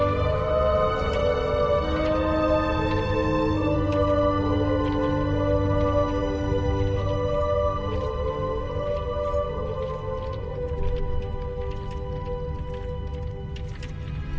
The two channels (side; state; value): both; identical; correlation 1.00